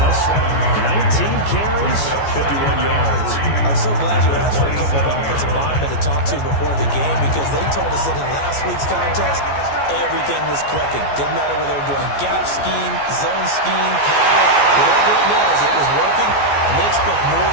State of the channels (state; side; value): late; right; 14 ms